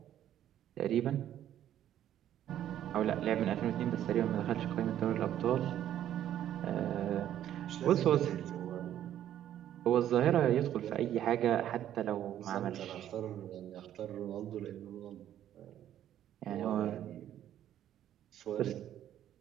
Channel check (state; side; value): quieter; left; 11.3 dB